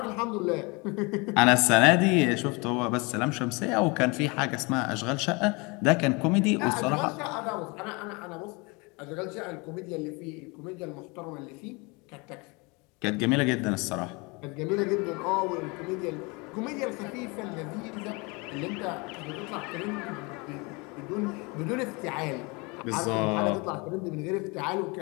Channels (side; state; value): right; quieter; 28.1 dB